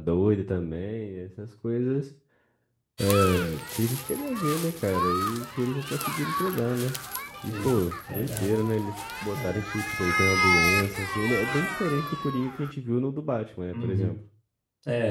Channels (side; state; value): both; identical; correlation 1.00